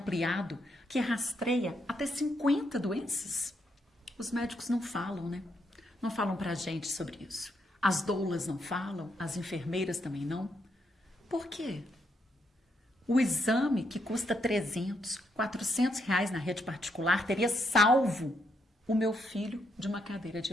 que rastreia até 50 doenças? Os médicos não falam, né? Não falam pra gente sobre isso. As doulas não falam, as enfermeiras também não. Por quê? O exame que custa 300, 400 reais na rede particular teria salvo o meu filho de uma cadeira de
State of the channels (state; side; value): normal; both; correlation 0.77